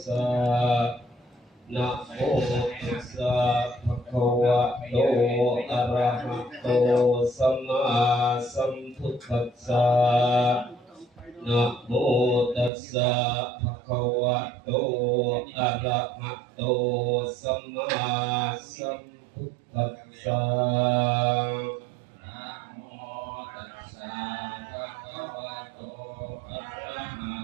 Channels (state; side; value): drops out; left; at 12.7 s